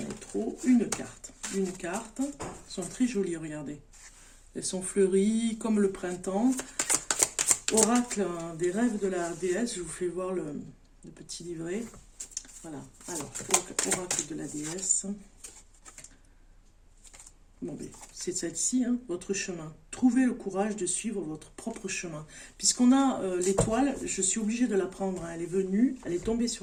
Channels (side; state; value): both; identical; correlation 1.00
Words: ai trop. Une carte. Elles sont très jolies, regardez. Elles sont fleuries comme le printemps. Oracle des rêves de la déesse. Je vous fais voir le petit livret. Voilà. Alors, oracle de la déesse. Bon, c'est celle-ci, hein, votre chemin. Trouvez le courage de suivre votre propre chemin. Puisqu'on a l'étoile, je suis obligée de la prendre. Hein, elle est venue, elle est tombée